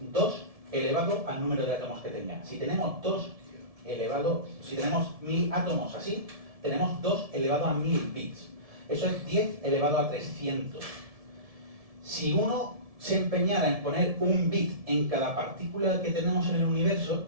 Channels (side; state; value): left; late; 1.7 ms